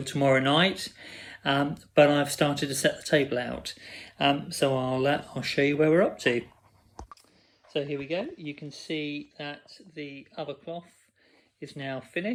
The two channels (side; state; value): both; identical; correlation 1.00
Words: tomorrow night, but I've started to set the table out. So I'll show you where we're up to. So here we go. You can see that the other cloth is now